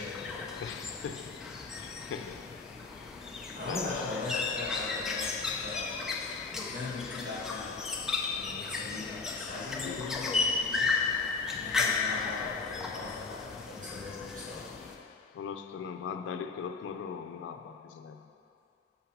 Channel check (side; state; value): right; quieter; 4.1 dB